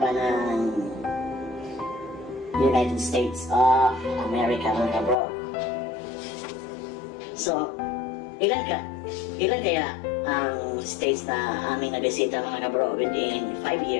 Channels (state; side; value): drops out; right; at 5.2 s